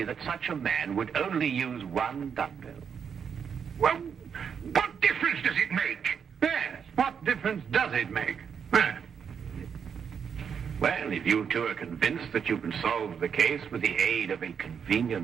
that such a man would only use one dumbbell? Well, what difference does it make? Yes, what difference does it make? Well, if you two are convinced that you can solve the case with the aid of a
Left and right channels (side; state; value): left; quieter; 7.1 dB